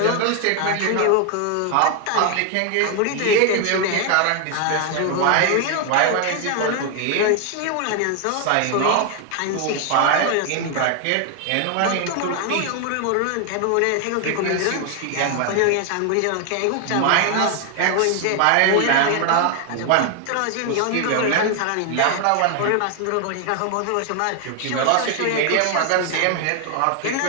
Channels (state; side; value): different; both; correlation 0.00